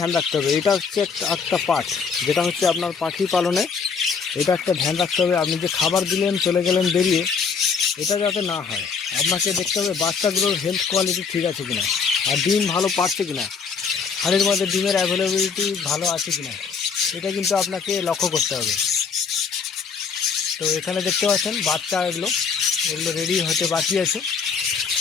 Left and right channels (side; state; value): right; quieter; 5.8 dB